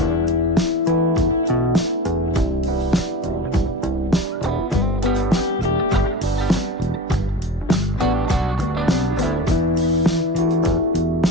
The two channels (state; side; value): normal; both; correlation 0.32